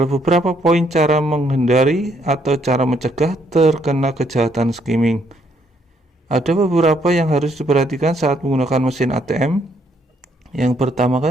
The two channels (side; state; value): both; normal; correlation 0.70